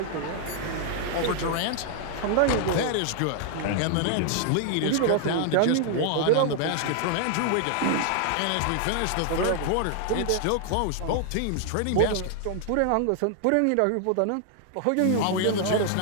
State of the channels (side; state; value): both; different; correlation 0.00